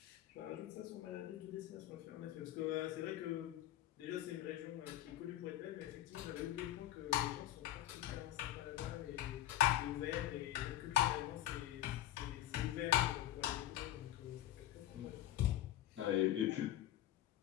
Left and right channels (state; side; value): quieter; right; 12.9 dB